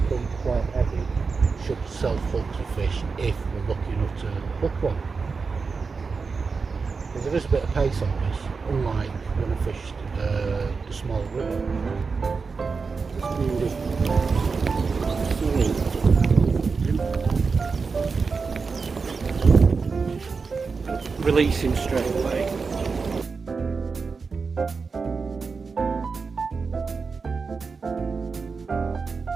is quite heavy, should self-hook the fish if we're lucky enough to hook one. Because there is a bit of pace on this, unlike when I fished the small river. releasing straight away.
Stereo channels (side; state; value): left; quieter; 4.8 dB